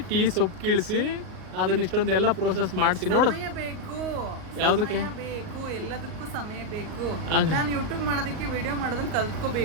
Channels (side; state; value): left; late; 38 ms